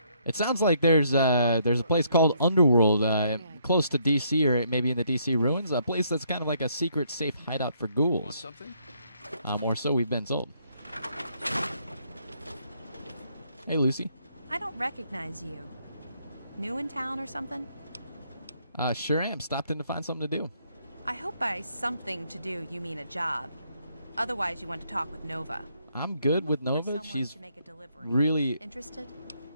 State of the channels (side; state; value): both; inverted; correlation -0.70